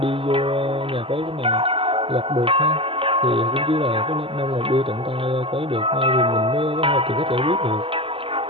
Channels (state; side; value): late; left; 0.26 ms